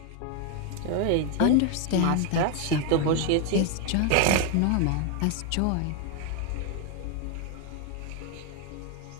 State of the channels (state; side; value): different; both; correlation 0.01